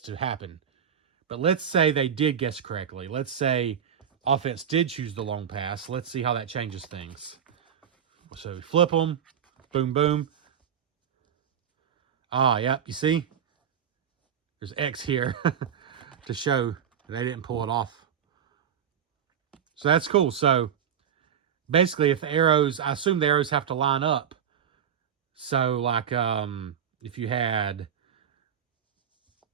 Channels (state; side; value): quieter; left; 8.6 dB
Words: to happen. But let's say they did guess correctly. Let's say offense did choose the long pass. Let's see how that changes things. So we flip them. Boom, boom. Ah, yep, you see? There's X here to show they didn't pull it off. So that's cool. So basically, if the arrows, I assume the arrows have to line up. So like if you had